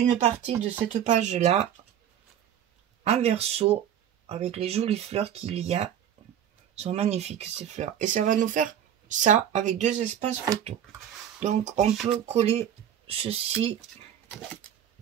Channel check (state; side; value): quieter; left; 9.8 dB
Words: partie de cette page-là, en verso, avec les jolies fleurs qu'il y a. Elles sont magnifiques, ces fleurs. Et ça va nous faire ça avec deux espaces photos. Donc, on peut coller ceci